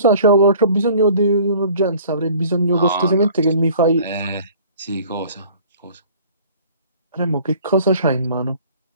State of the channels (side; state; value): both; inverted; correlation -0.51